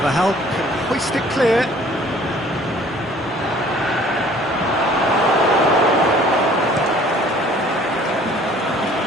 can hoist it clear.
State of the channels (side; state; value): both; normal; correlation 0.54